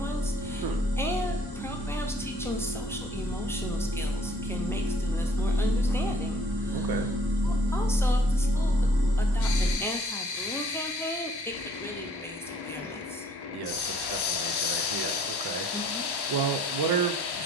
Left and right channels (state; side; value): normal; both; correlation 0.58